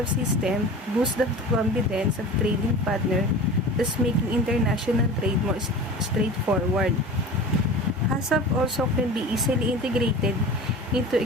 system boosts the confidence of trading partners, thus making international trade more straightforward. HACCP also can be easily integrated into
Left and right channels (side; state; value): both; normal; correlation 0.35